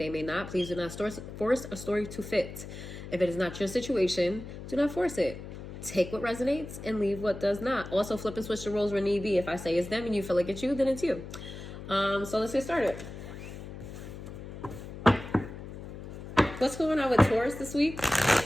may not. Please do not force a story to fit. If it is not your situation, do not force it. Take what resonates and leave what does not. Also, flip and switch the roles where need be. If I say it's them and you feel like it's you, then it's you. So let's get started. What's going on with Taurus this week?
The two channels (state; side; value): noise; left; hum, 11 dB below the sound